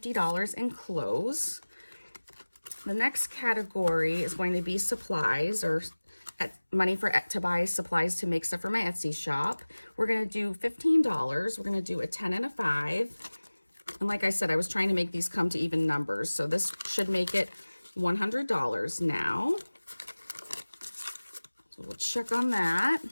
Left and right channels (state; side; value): inverted; both; correlation -1.00